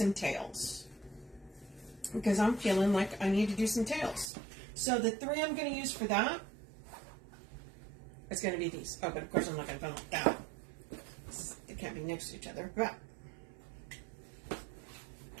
tails. Because I'm feeling like I need to do some tails. So the 3 I'm going to use for that is going to be these. Oh, but of course I'm not going to put them like that. They can't be next to each other. But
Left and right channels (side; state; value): left; drops out; at 4.3 s